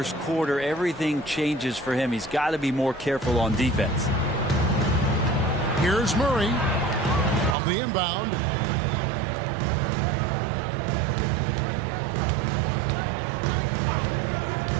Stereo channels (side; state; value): left; drops out; at 7.6 s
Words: quarter, everything changes for him. He's got to be more careful on defense. Here's Murray on the inbound.